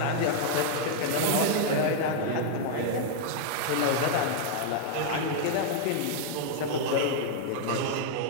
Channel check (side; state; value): both; different; correlation -0.01